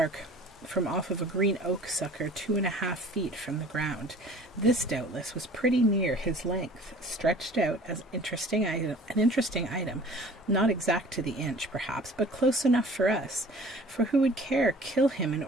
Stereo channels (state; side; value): normal; both; correlation 0.48